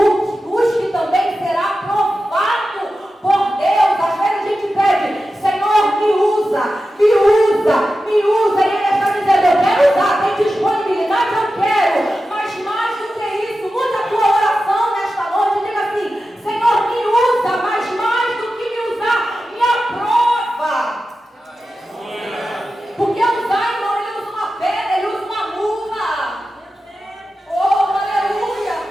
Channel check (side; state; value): both; normal; correlation 0.92